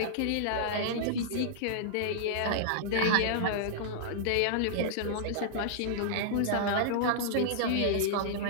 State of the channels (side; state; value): both; different; correlation -0.01